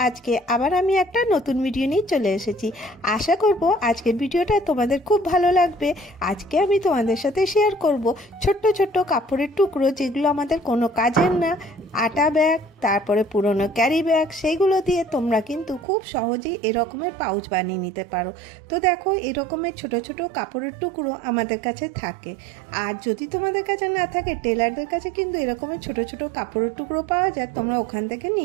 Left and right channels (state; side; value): drops out; left; at 15.9 s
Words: আজকে আবার আমি একটা নতুন ভিডিও নিয়ে চলে এসেছি। আশা করব আজকের ভিডিওটা তোমাদের খুব ভালো লাগবে। আজকে আমি তোমাদের সাথে শেয়ার করব ছোট্ট ছোট্ট কাপড়ের টুকরো, যেগুলো আমাদের কোনো কাজের না। আটা ব্যাগ, তারপরে পুরনো ক্যারি ব্যাগ, সেইগুলো দিয়ে তোমরা কিন্তু খুব সহজেই এরকমের পাউচ বানিয়ে নিতে পারো। তো দেখো, এরকমের ছোট ছোট কাপড়ের টুকরো আমাদের কাছে থাকে। আর যদি তোমাদের কাছে না থাকে, টেলারদের কাছে কিন্তু এরকমের ছোট ছোট কাপড়ের টুকরো পাওয়া যায়, তোমরা ওখান থেকে